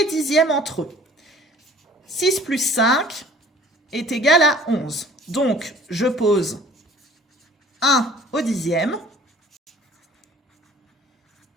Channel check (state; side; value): normal; both; correlation 0.51